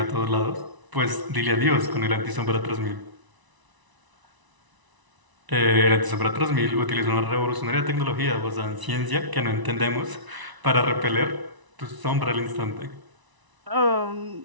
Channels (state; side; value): late; left; 1.0 ms